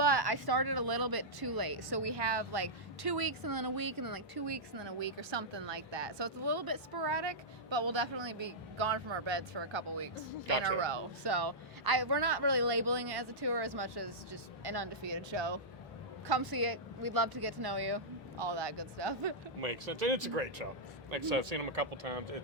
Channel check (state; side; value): normal; both; correlation -0.11